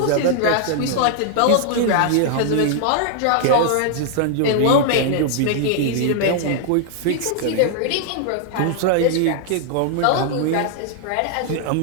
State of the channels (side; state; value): both; different; correlation 0.00